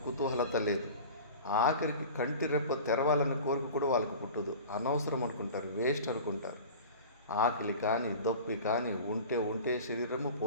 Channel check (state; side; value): inverted; both; correlation -0.37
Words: కుతూహలత లేదు. ఆఖరికి కంటి రెప్ప తెరవాలన్న కోరిక కూడా వాళ్ళకి పుట్టదు. అనవసరం అనుకుంటారు, వేస్ట్ అనుకుంటారు. ఆకలి కానీ, దొప్పి కానీ ఉంటే శరీరము,